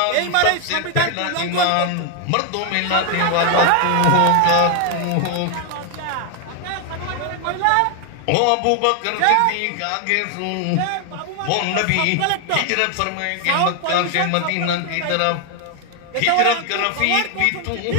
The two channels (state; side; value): different; both; correlation 0.00